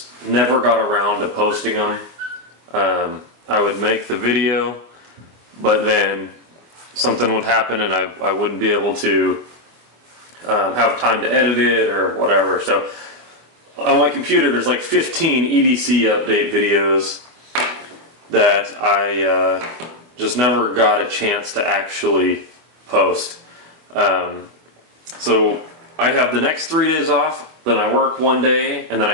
never got around to posting them. I would make the video, but then something would happen and I wouldn't be able to have time to edit it or whatever. So on my computer there's like 15 EDC update videos that I just never got a chance to actually post. So I have the next 3 days off, then I work 1 day, and then I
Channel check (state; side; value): late; left; 25 ms